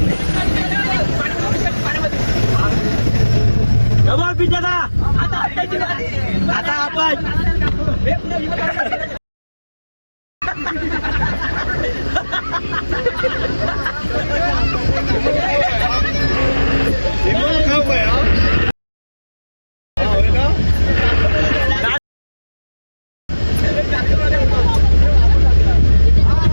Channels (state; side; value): inverted; both; correlation -1.00